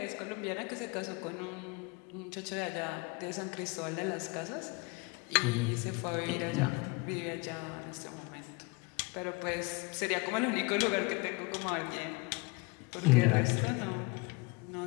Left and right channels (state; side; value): quieter; right; 27.6 dB